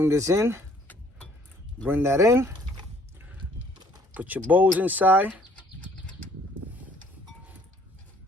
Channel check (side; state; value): both; normal; correlation 0.60